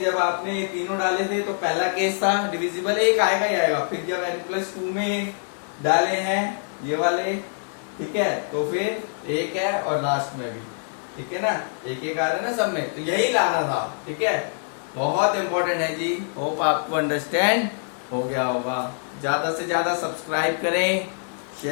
जब आपने ये तीनों डाले थे तो पहला केस था डिविजिबल एक आएगा ही आएगा। फिर जब n+2 में डाले हैं ये वाले, ठीक है, तो फिर एक है और लास्ट में भी, ठीक है ना, एक एक आ रहा है ना सब में, तो यही लाना था, ठीक है। बहुत इंपॉर्टेंट है जी। होप आपको अंडरस्टैंड हो गया होगा। ज्यादा से ज्यादा सब्सक्राइब करें,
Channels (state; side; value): silent; right; 62 dB below the other